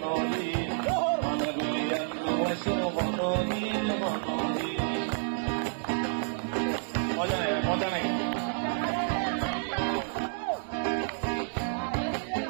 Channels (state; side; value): silent; left; digital silence